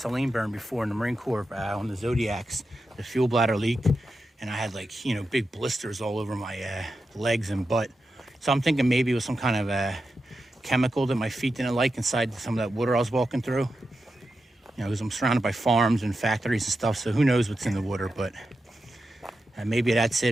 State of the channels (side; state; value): both; normal; correlation 0.89